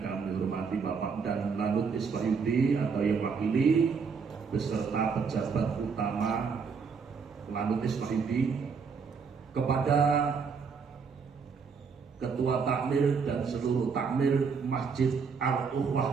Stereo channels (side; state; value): left; quieter; 5.6 dB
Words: hormati Bapak dan Lanut Iswahyudi atau yang wakili beserta pejabat utama Lanut Iswahyudi, kepada Ketua Takmir dan seluruh Takmir Masjid